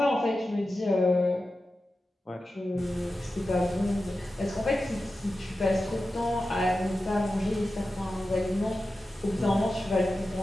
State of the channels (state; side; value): normal; both; correlation 0.93